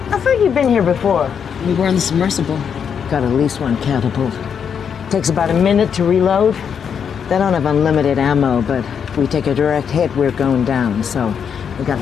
I've heard you've been here before. We were on the submersible. Got at least one catapult. Takes about a minute to reload. They don't have unlimited ammo, but if we take a direct hit, we're going down, so we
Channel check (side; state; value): right; quieter; 7.3 dB